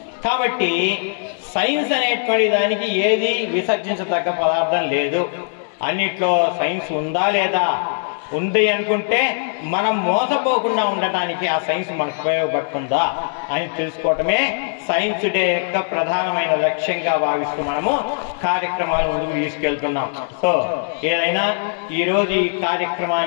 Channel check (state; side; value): silent; right; digital silence